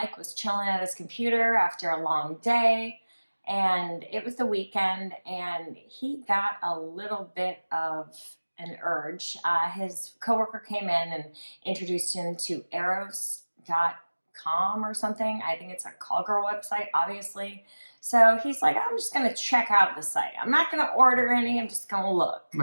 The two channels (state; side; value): inverted; both; correlation -1.00